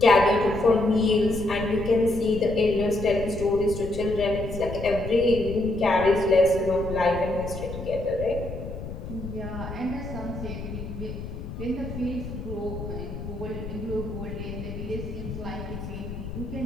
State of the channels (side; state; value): left; noise; rumble, 8 dB below the sound